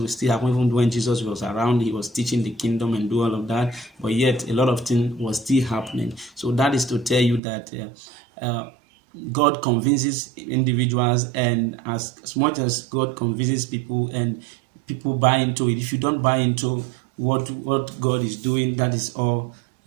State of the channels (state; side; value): drops out; left; at 7.4 s